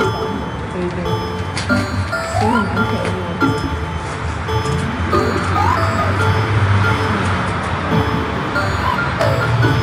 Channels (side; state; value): both; identical; correlation 1.00